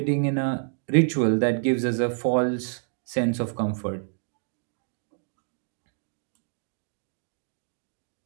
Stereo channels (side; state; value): left; silent; digital silence